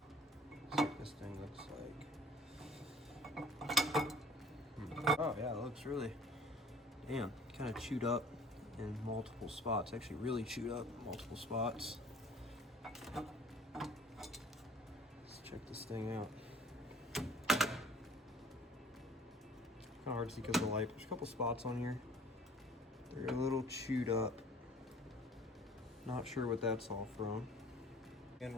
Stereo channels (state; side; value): normal; both; correlation 0.51